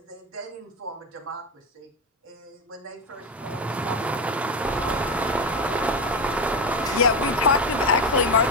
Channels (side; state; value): both; normal; correlation 0.16